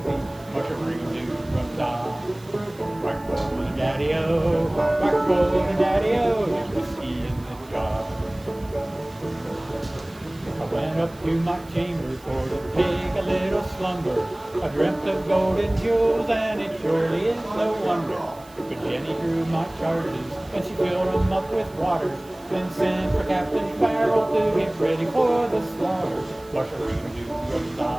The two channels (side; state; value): right; noise; hiss, 25 dB below the sound